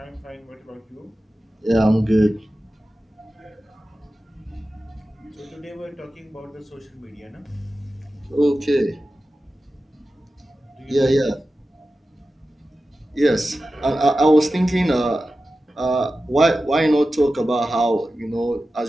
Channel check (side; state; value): both; normal; correlation 0.94